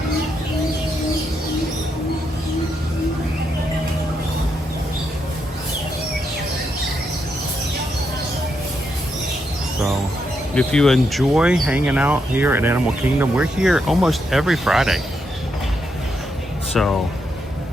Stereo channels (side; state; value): both; normal; correlation 0.80